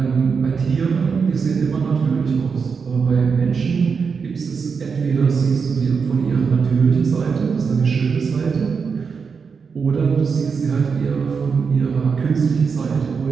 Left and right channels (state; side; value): quieter; left; 5.6 dB